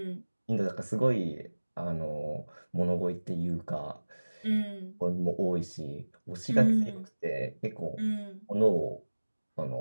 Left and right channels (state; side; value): inverted; both; correlation -1.00